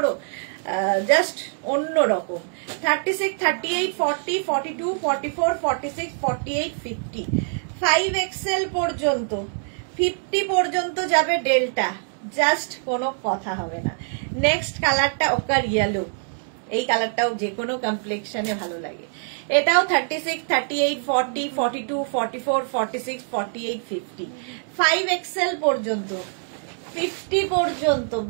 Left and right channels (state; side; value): silent; left; 63 dB below the other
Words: জাস্ট অন্য রকম। 36, 38, 40, 42, 44, 46, 48, 50, 5XL পর্যন্ত, 50 পর্যন্ত যাবে ডেল্টা, জাস্ট কোনো কথা হবে না। নেক্সট কালারটা ওকার ইয়েলো, এই কালারটাও যে কোনো কমপ্লেক্সনে ভালো লাগে। এটাও 36, 38, 40, 42, 44, 46, 48, 50, 5XL পর্যন্ত, 50 পর্যন্ত।